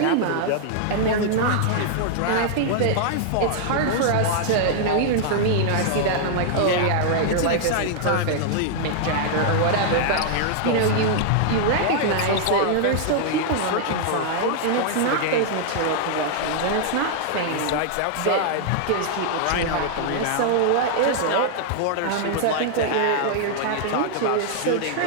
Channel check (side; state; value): both; different; correlation -0.01